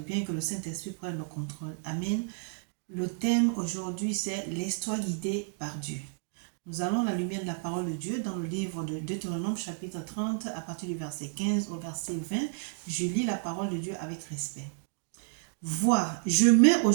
que le Saint-Esprit prenne le contrôle. Amen. Le thème aujourd'hui, c'est l'histoire guidée par Dieu. Nous allons à la lumière de la parole de Dieu dans le livre de Deutéronome chapitre 30 à partir du verset 15 au verset 20. Je lis la parole de Dieu avec respect. Vois, je mets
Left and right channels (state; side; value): silent; left; digital silence